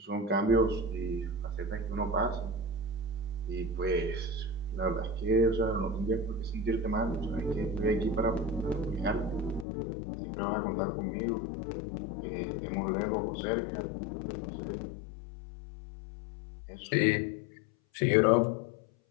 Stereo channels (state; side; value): drops out; right; at 9.7 s